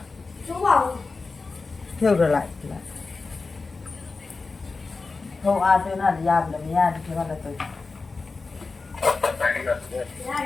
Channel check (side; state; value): right; quieter; 4.0 dB